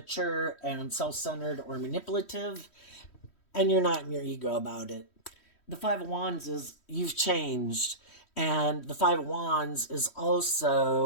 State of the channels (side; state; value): right; late; 3.1 ms